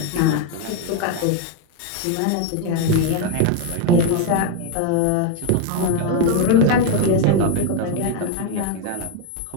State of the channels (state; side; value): different; both; correlation 0.01